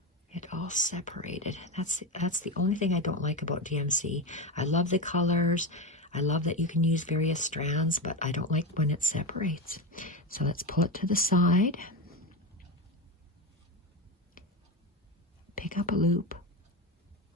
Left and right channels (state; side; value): normal; both; correlation 0.18